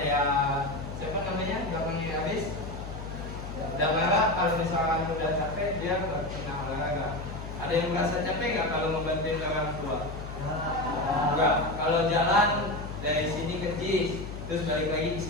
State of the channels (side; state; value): left; noise; hum, 9 dB below the sound